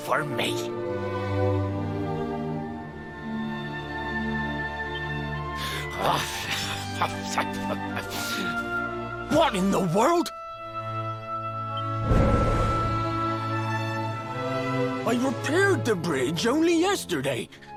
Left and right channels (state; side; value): identical; both; correlation 1.00